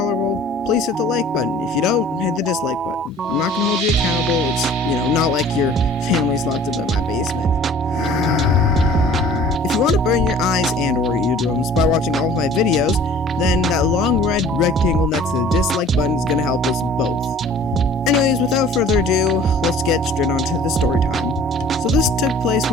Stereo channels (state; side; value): normal; both; correlation 0.49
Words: please hit the like button. If you don't, hit the dislike button. I'm not gonna hold you accountable. It's, not like your family's locked up in my basement. If you want to burn your eyes and or eardrums by watching all of my videos, then that long red rectangle next to the dislike button is going to help us both. Anyways, without further ado, let's get straight on to the story time. So this took place